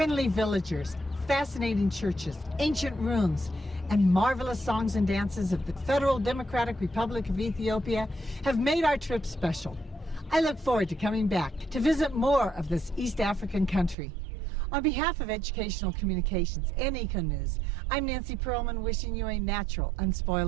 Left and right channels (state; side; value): drops out; left; at 14.0 s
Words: villagers, fascinating churches, ancient ruins, and marvelous songs and dances of the Federal Democratic Republic of Ethiopia have made our trip special. I look forward to coming back to visit more of this East African country. On behalf of Educational Communications and Eco News, I'm Nancy Perlman, wishing you a natural,